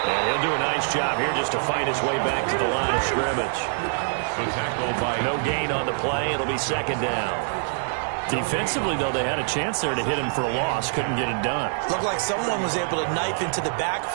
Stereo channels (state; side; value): silent; left; digital silence